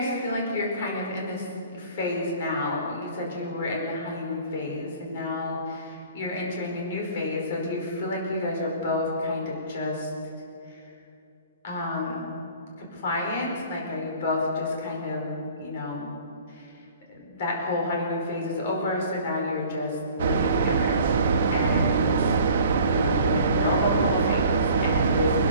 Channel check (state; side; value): inverted; both; correlation -0.49